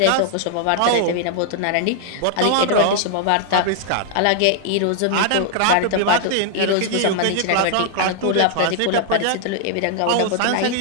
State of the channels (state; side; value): different; both; correlation 0.00